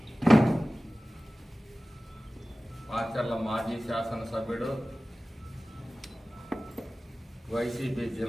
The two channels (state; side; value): normal; both; correlation 0.97